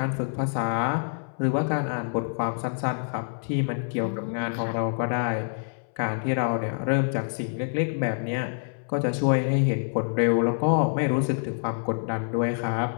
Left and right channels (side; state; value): right; silent; 61 dB below the other